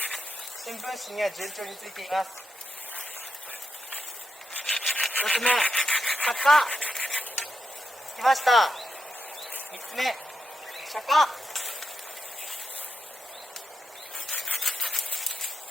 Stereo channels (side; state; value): both; normal; correlation 0.86